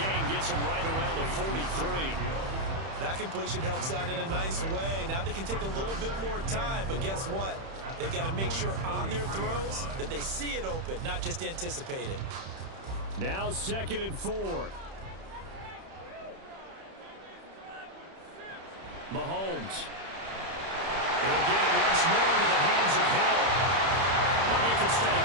gets him right around the 43. That completion helps out in a nice way. Now they can take a little bit more time, but guess what? They've got to make sure on their throws that they see it open, not just anticipate it. Now 2nd and 4. Mahomes. He'll get it once more into the hands of Hill. We're making steady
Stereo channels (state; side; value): late; left; 31 ms